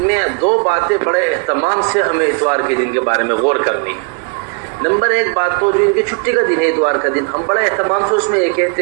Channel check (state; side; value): quieter; left; 37.1 dB